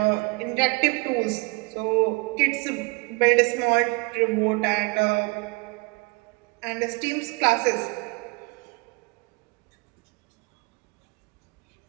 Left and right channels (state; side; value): quieter; left; 28.3 dB